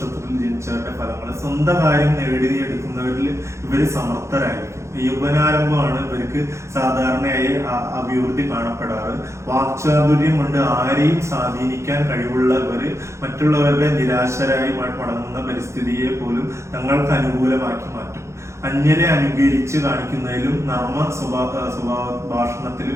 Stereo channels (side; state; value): left; late; 0.14 ms